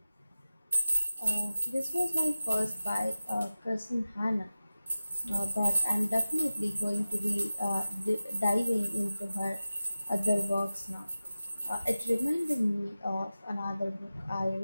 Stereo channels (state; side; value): inverted; both; correlation -0.95